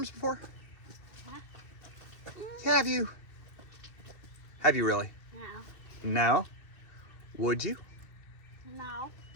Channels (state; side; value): late; right; 2.6 ms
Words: before? Huh? Have you? Have you really? No. No? Would you? No.